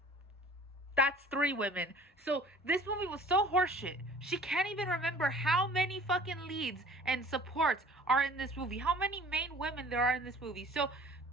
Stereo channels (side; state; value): both; normal; correlation 0.48